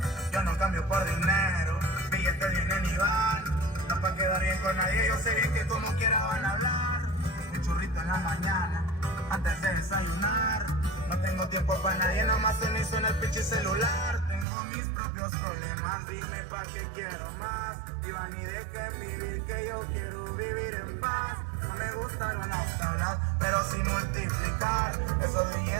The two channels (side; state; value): left; drops out; at 14.5 s